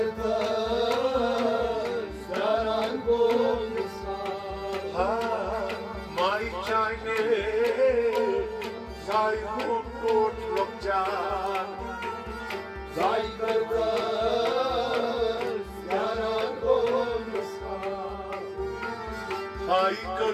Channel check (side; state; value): both; identical; correlation 1.00